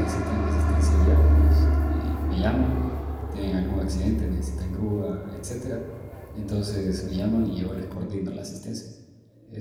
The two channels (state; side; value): identical; both; correlation 1.00